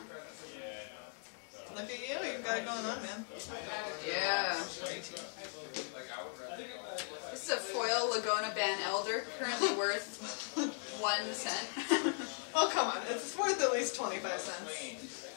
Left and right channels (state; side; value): silent; right; 52 dB below the other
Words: Look at you, you've got it going on, man. Yeah. This is a foil Laguna Ban Elder, currently worth 1 cent. Oh come on, it's worth at least 25 cents.